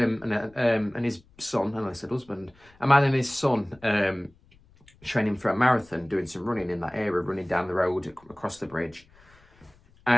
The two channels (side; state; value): left; noise; rumble, 29 dB below the sound